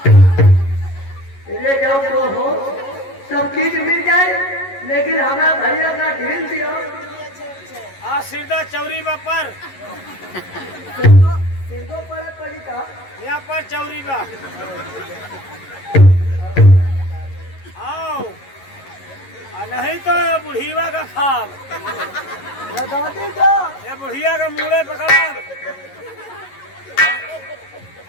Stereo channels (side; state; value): right; late; 11 ms